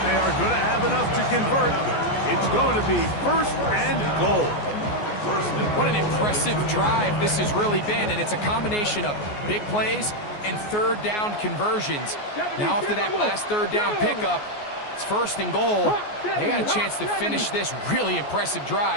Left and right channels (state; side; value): late; right; 14 ms